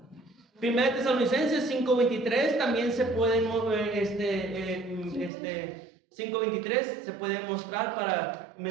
1 Tesalonicenses 5:23 también se puede mover, 5:23 se puede mostrar para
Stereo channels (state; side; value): drops out; left; at 5.3 s